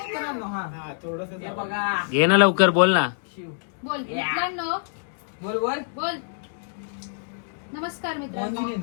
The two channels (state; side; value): silent; right; digital silence